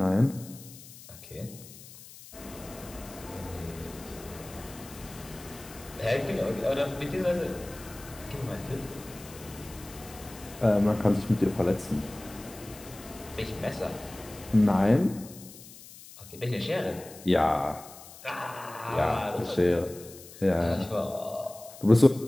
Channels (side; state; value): left; noise; hiss, 18 dB below the sound